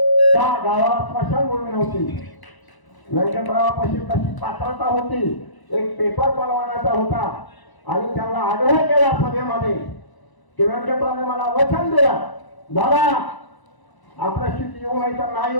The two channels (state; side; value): late; right; 1.0 ms